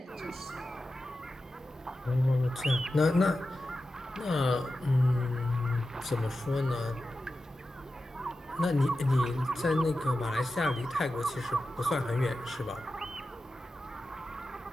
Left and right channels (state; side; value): normal; both; correlation 0.92